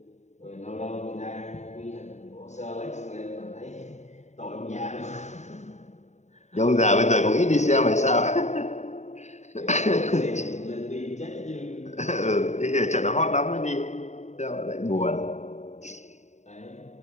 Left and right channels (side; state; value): right; late; 0.34 ms